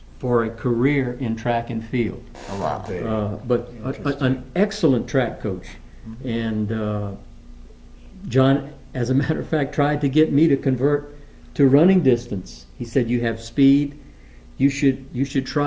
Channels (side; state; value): both; identical; correlation 1.00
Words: for a career in track and field. Oh, wow. But an excellent track coach. And John, as a matter of fact, tried to get me to convert to running distance. He said, "You have speed. You should